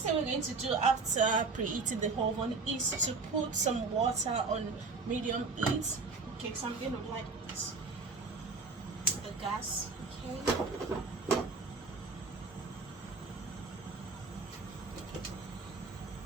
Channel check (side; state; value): left; quieter; 4.2 dB